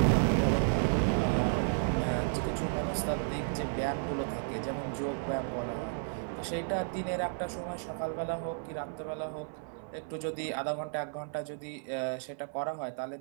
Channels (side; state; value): left; silent; 56 dB below the other